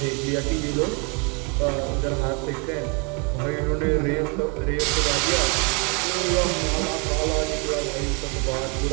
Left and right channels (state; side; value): quieter; left; 33.6 dB